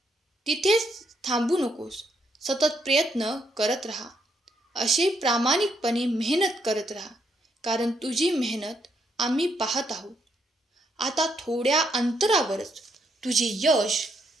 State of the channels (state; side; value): normal; both; correlation 0.75